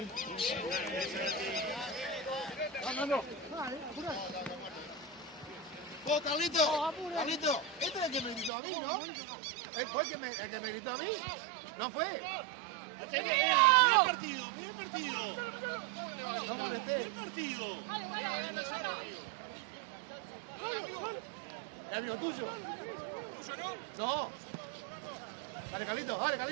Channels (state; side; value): drops out; left; at 8.5 s